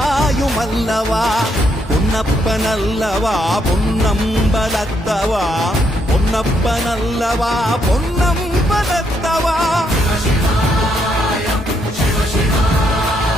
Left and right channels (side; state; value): both; normal; correlation 0.75